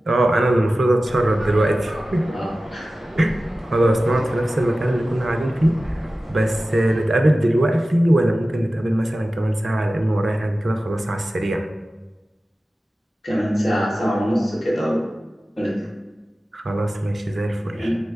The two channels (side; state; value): both; normal; correlation 0.95